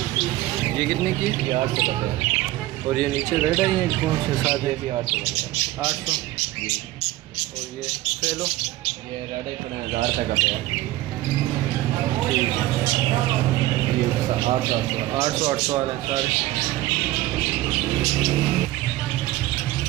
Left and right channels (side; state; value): left; quieter; 16.8 dB